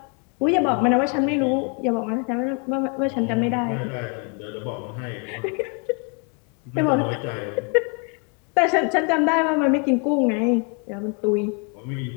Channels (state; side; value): quieter; right; 35.2 dB